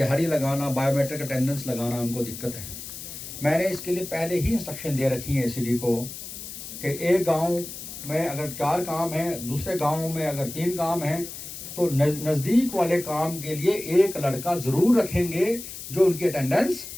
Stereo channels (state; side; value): noise; left; hiss, 11 dB below the sound